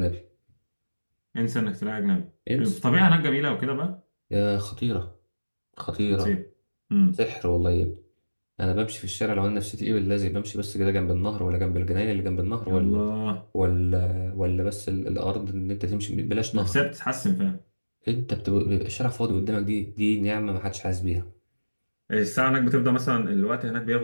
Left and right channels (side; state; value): both; inverted; correlation -1.00